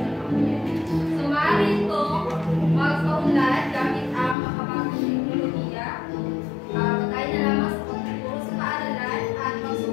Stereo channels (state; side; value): drops out; right; at 4.4 s